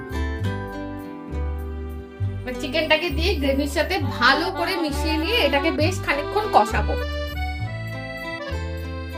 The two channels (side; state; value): both; identical; correlation 1.00